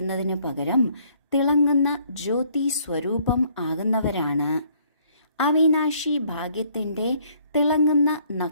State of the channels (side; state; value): both; inverted; correlation -0.63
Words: പകരം തിളങ്ങുന്ന ജ്യോതി സ്വരൂപം ആകുന്നവരാണ്. അവിനാശി ഭാഗ്യത്തിന്റെ തിളങ്ങുന്ന